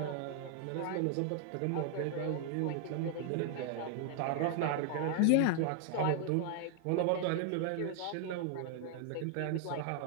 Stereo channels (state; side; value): different; both; correlation 0.00